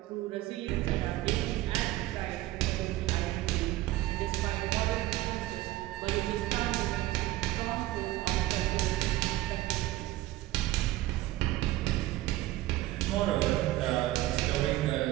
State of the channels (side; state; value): left; quieter; 16.6 dB